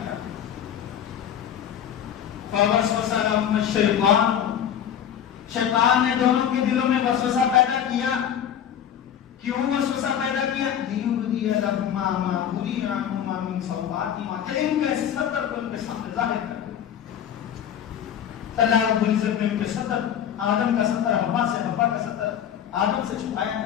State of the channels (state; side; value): quieter; right; 9.4 dB